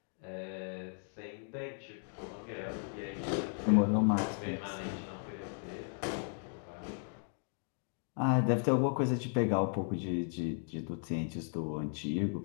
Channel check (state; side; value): silent; right; 54 dB below the other